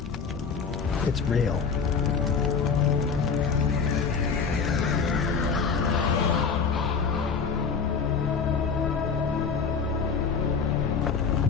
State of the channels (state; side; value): quieter; right; 5.6 dB